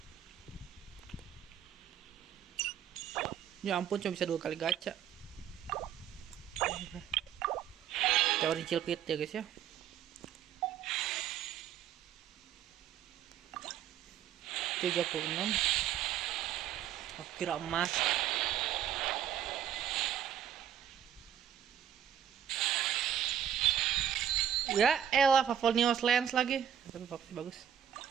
Ya ampun, cuma bisa 2 kali gacha. Teori cilpit ya guys ya. $36. Aku kira emas. Ya elah, Favonius Lens lagi. Tapi bagus.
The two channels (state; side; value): quieter; left; 9.8 dB